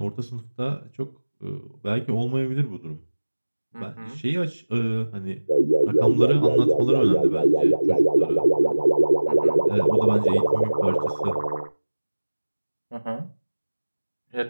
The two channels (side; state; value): both; inverted; correlation -1.00